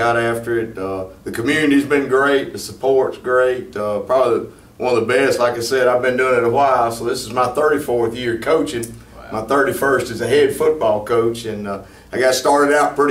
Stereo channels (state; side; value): identical; both; correlation 1.00